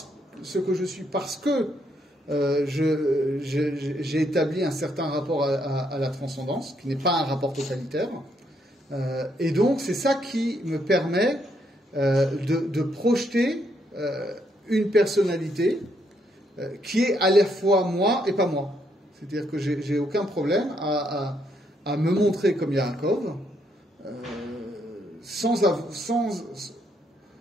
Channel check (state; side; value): normal; both; correlation 0.74